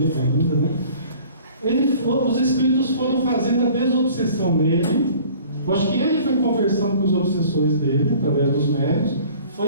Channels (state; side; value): inverted; both; correlation -0.49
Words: ainda, né? Os espíritos foram fazendo a desobsessão nele. Eu acho que ele foi conversando com os obsessores dele, através dos médios,